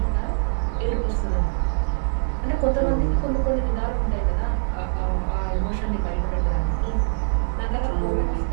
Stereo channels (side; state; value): left; silent; 60 dB below the other